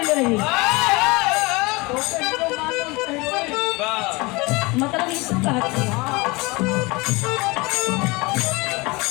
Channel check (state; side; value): quieter; right; 24.8 dB